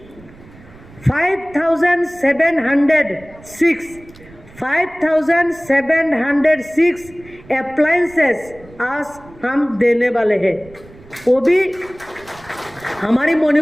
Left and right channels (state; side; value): noise; right; rumble, 23 dB below the sound